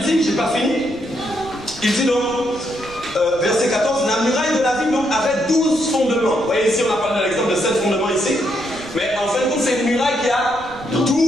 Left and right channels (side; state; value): right; noise; rumble, 20 dB below the sound